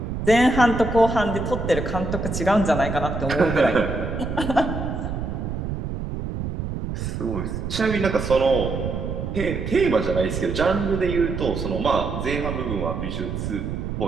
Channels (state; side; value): noise; right; rumble, 4 dB below the sound